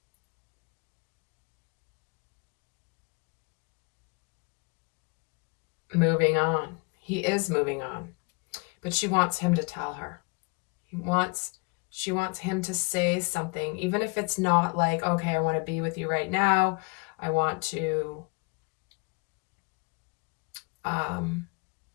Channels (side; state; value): right; quieter; 30.5 dB